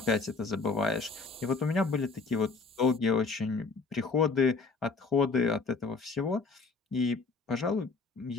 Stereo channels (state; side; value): quieter; right; 4.3 dB